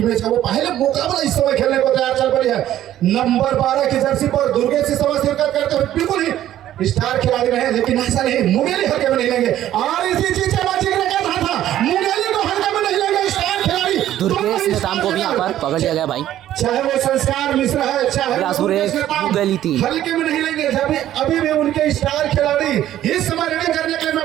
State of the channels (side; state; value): left; quieter; 12.5 dB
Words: मैच का वो पहले मुकाबला इस समय खेलने को तैयार चल पड़ी है। नंबर 12 की जर्सी पर दुर्गेश से समय शिरकत करते हुए बिल्कुल ही स्टार खिलाड़ी रहे, लेकिन ऐसा नहीं मुगेली हल्के में नहीं लेंगे और इसी चीज का जिक्र कर रहा था, मुगेली को हल्के में नहीं लेंगे स्टार खिलाड़ी। दुर्गेश नेताम को भी यहाँ पर पकड़ लिया गया भाई, चाहे वो संस्कार मिश्रा है चाहे मुगेली थी, हल्के में नहीं लेंगे। जब अभी भी उनके स्टार खिलाड़ी इस समय रेडिंग करने के लिए